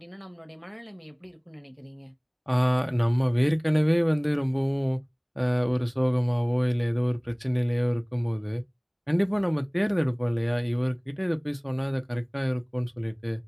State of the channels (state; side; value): identical; both; correlation 1.00